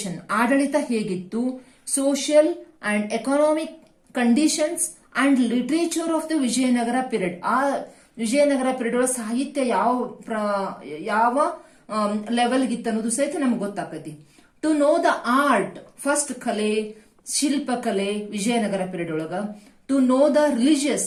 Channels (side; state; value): both; identical; correlation 1.00